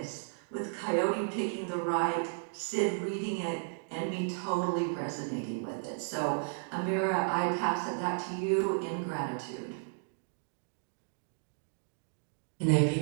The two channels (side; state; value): left; silent; digital silence